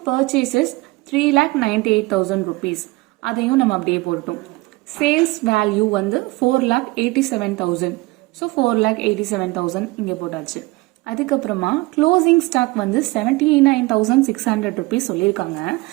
purchases 3,98,000 rupees. அதையும் நம்ம அப்படியே போட்டோம். சேல்ஸ் வேல்யூ வந்து 4,87,000. ஸோ 4,87,000 இங்கே போட்டாச்சு. அதுக்கப்புறமா க்ளோசிங் ஸ்டாக் வந்து 79,600 rupees சொல்லியிருக்காங்க.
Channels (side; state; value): left; quieter; 22.3 dB